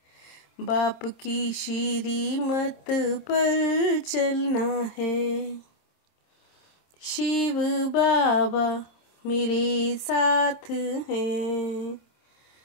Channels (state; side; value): late; right; 27 ms